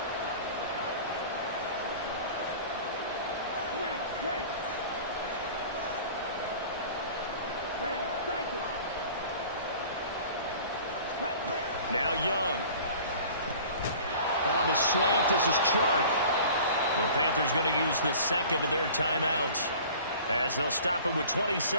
Now Young. On the slant, this is Chark. The Panthers going to use the second of their timeouts, as they'll stop it with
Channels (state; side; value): inverted; both; correlation -0.45